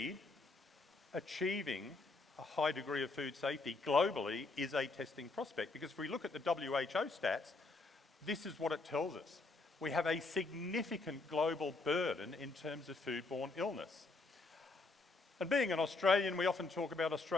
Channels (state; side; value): quieter; right; 3.6 dB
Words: achieving a high degree of food safety globally is a testing prospect. Because if we look at the WHO stats, this is what it tells us. We have a significant global burden in terms of foodborne illness. And being an Australian, we often talk about